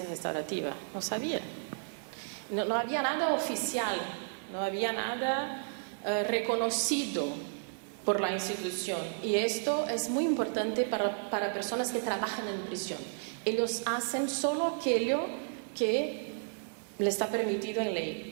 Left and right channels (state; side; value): silent; left; 56 dB below the other